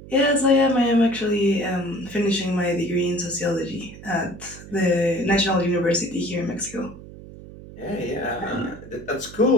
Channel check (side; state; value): right; noise; hum, 16 dB below the sound